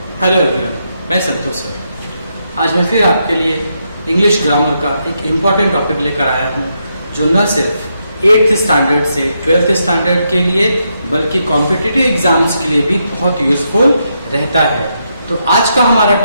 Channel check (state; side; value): inverted; both; correlation -0.81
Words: हेलो एवरीवन, मैं संतोष सर। आज मैं फिर आपके लिए इंग्लिश ग्रामर का एक इम्पॉर्टेंट टॉपिक लेकर आया हूँ, जो न सिर्फ 8th स्टैंडर्ड से 12th स्टैंडर्ड के लिए बल्कि कॉम्पिटिटिव एग्जाम्स के लिए भी बहुत यूजफुल रहता है। तो आज का हमारा